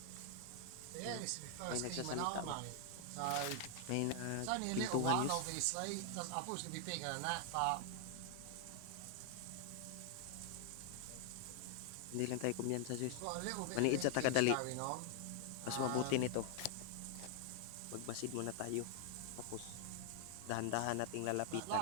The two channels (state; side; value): different; both; correlation 0.00